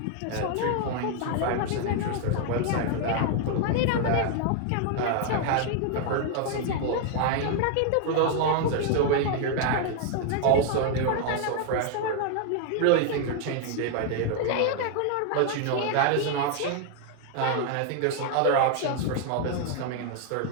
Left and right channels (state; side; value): different; both; correlation 0.00